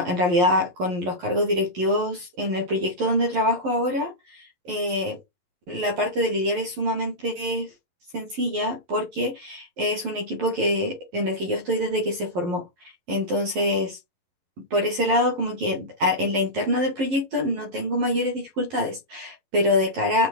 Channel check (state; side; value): late; left; 11 ms